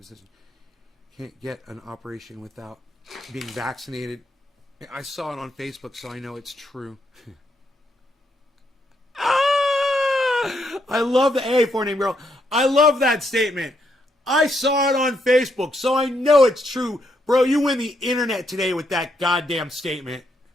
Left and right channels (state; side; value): normal; both; correlation 0.77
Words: decision. Can't get an operation without being vaccinated. I saw it on Facebook, so I know it's true. I love the A for name girl. I love that statement. I saw it on Facebook, so I know it's true. Bro, you win the internet today with that goddamn statement.